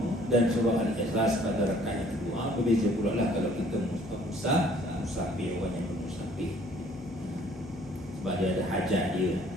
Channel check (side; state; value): left; noise; hum, 18 dB below the sound